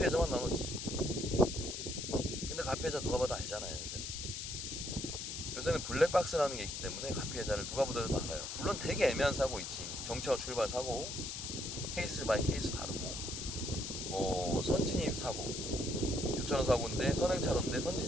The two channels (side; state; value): left; noise; hiss, 5 dB below the sound